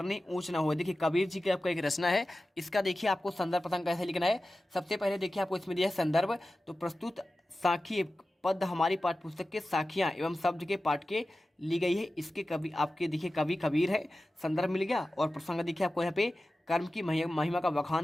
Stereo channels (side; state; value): both; normal; correlation 0.95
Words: ऊंच ना हो। देखिए कबीर जी की आपका एक रचना है, इसका देखिए आपको संदर्भ प्रसंग कैसे लिखना है। सबसे पहले देखिए आपको इसमें दिया है संदर्भ। तो प्रस्तुत साखी पद हमारी पाठ्य पुस्तक के साखियां एवं शब्द के पाठ के ली गई है। इसके कवि आपके देखिए कवि कबीर है, संदर्भ मिल गया। और प्रसंग देखिए आपको यहाँ पे कर्म की महिमा का